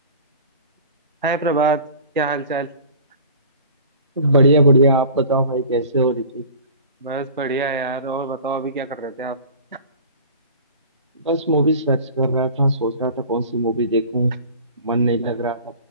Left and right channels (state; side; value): inverted; both; correlation -0.42